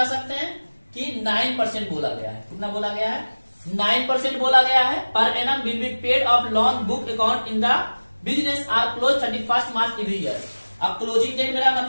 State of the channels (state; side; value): inverted; both; correlation -1.00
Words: सकते हैं कि 9% बोला गया है। कितना बोला गया है, 9% बोला गया है। Per annum will be paid of loan book account in the business are close 31 March every year. अब क्लोजिंग डेट मेरा